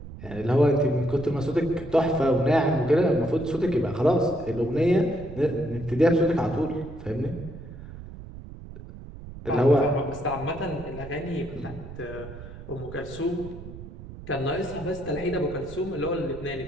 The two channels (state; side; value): noise; right; rumble, 14 dB below the sound